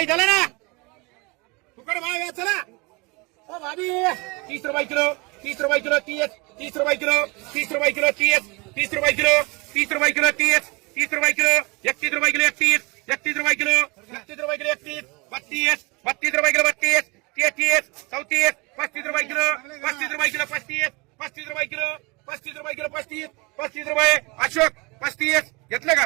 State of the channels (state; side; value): quieter; left; 27.1 dB